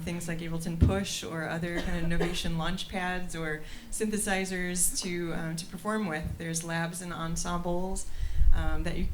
things like Ableton Push or other kind of innovation launch pads or synthesizers to perform with. There's labs and ensembles that you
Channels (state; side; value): identical; both; correlation 1.00